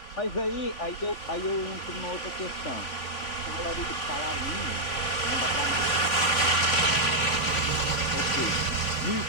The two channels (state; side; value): late; right; 3.4 ms